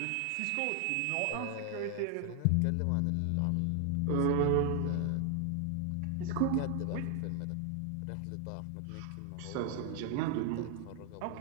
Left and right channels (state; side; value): different; both; correlation 0.00